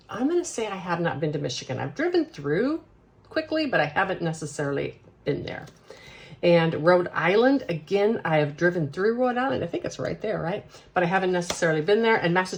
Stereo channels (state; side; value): identical; both; correlation 1.00